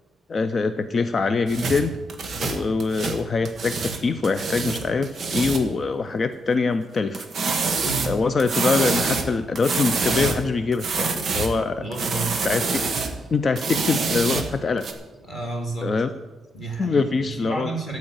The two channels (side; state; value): both; normal; correlation 0.81